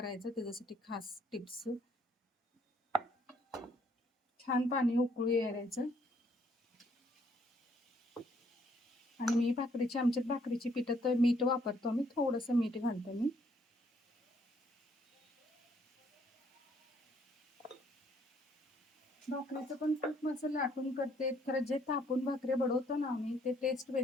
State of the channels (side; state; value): both; normal; correlation 0.67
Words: त्याच्यासाठी खास टिप्स. छान पाणी उकळू यायचं. आणि मी आमच्यात भाकरीची पिठात मीठ वापरतो आम्ही. थोडंसं मीठ घालतो मी. भाकरीचं पण खूप असं लाटून करते. खरं जे तापून भाकरी बडवतो ना आम्ही ते टेस्ट